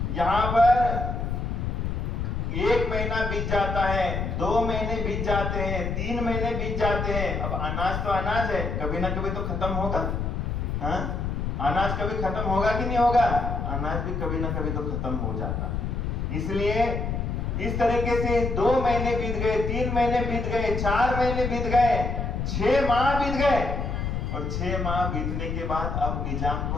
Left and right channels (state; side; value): noise; left; rumble, 2 dB below the sound